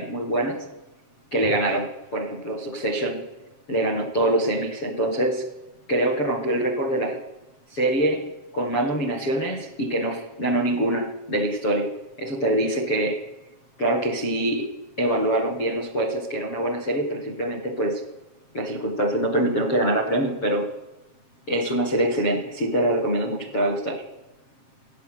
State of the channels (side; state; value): right; late; 7.5 ms